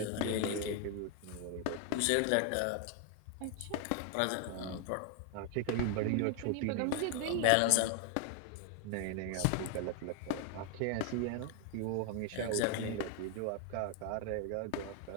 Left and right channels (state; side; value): different; both; correlation 0.00